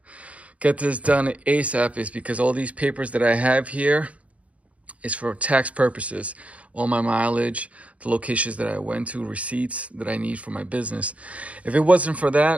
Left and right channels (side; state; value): left; late; 0.067 ms